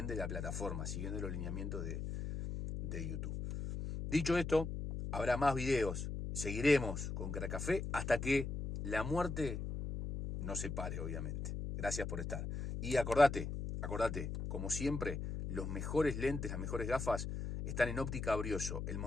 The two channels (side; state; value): left; noise; hum, 4 dB below the sound